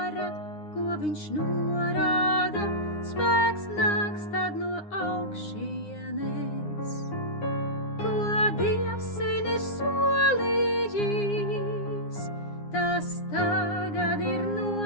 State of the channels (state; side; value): late; right; 9.8 ms